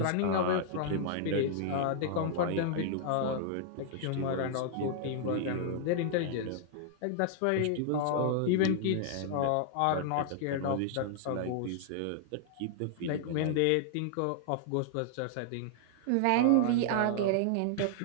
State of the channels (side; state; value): both; different; correlation -0.01